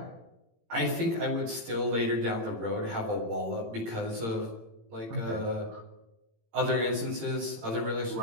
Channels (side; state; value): left; late; 18 ms